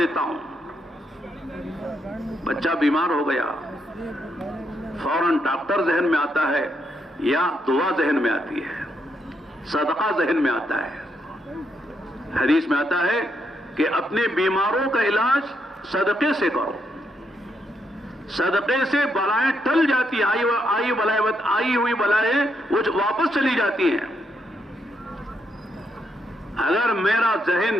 ہوں؟ بچہ بیمار ہو گیا، فوراً ڈاکٹر ذہن میں آتا ہے یا دعا ذہن میں آتی ہے، صدقہ ذہن میں آتا ہے؟ حدیث میں آتا ہے کہ اپنے بیماروں کا علاج صدقے سے کرو، صدقے سے بلائیں ٹل جاتی ہیں، آئی ہوئی بلائیں وہ واپس چلی جاتی ہیں۔ اگر میرا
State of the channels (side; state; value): both; normal; correlation 0.78